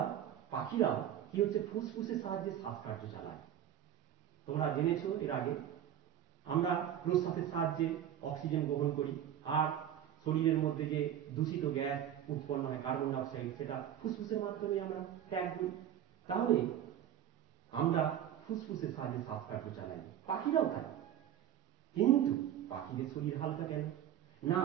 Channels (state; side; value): quieter; left; 10.7 dB